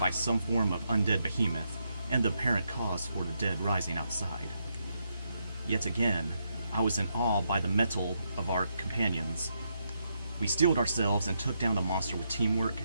some form of undead behemoth, and the apparent cause for the dead rising outside. Yet again, I was in awe by the mettle of our companions. We steeled ourselves and took down the monster with teamwork,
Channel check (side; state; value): both; inverted; correlation -0.81